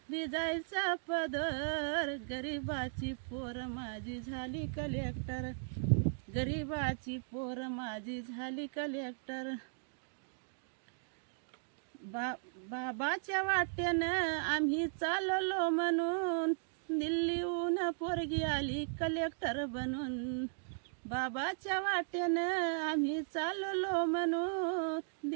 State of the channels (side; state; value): left; silent; digital silence